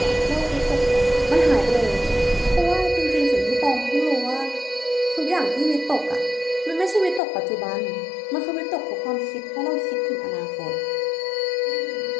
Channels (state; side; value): drops out; right; at 7.2 s